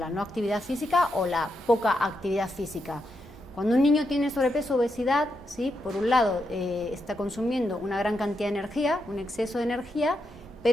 no actividad física o la poca actividad física. Cuando un niño tiene sobrepeso o obesidad, ¿sí?, por un lado está consumiendo una gran cantidad de energía, un exceso de energía,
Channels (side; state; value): both; normal; correlation 0.83